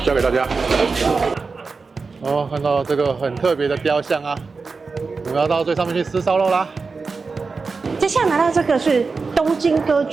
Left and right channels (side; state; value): left; quieter; 4.4 dB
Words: 交给大家。哦，看到这个很特别的雕像啊，我们要到最上面去吃烧肉啦。接下来拿到这个是东京歌